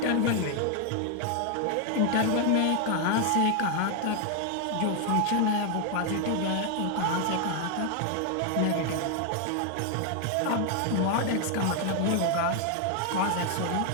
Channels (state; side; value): different; both; correlation 0.00